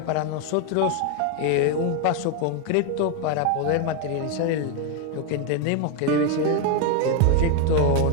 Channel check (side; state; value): both; different; correlation 0.01